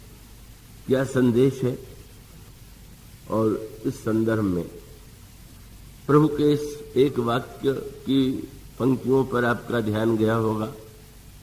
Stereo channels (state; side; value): identical; both; correlation 1.00